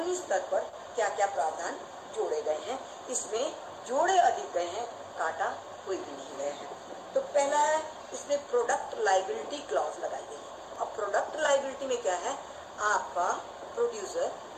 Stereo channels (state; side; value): identical; both; correlation 1.00